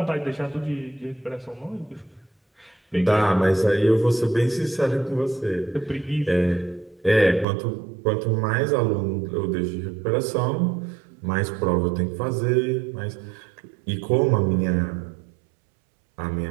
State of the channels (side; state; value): left; drops out; at 7.5 s